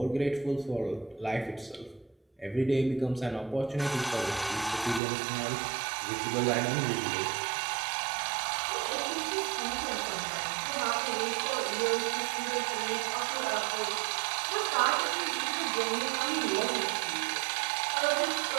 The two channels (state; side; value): drops out; left; at 5.0 s